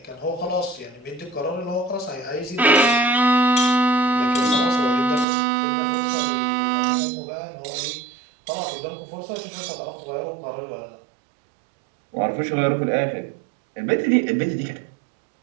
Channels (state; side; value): drops out; left; at 5.2 s